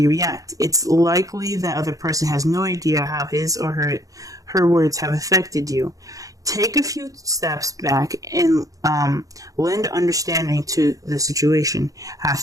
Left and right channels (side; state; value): left; late; 0.17 ms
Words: react. It's likely that other person has no idea how his or her words have affected you. Take a few steps back and lend understanding to the situation. Have